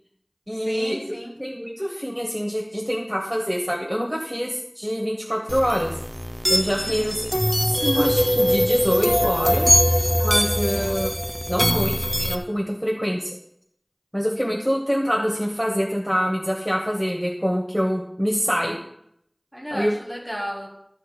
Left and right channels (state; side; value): identical; both; correlation 1.00